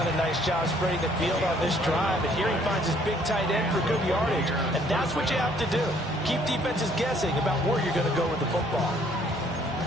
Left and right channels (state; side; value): noise; right; hum, 18 dB below the sound